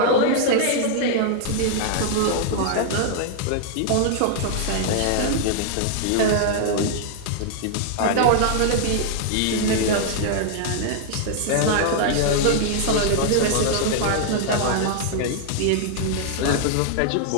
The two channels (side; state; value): both; different; correlation -0.01